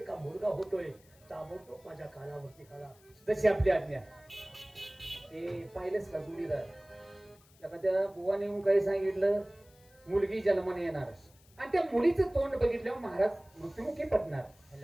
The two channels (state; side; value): noise; left; hiss, 28 dB below the sound